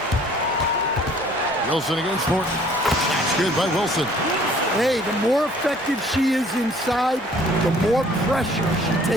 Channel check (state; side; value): normal; both; correlation 0.55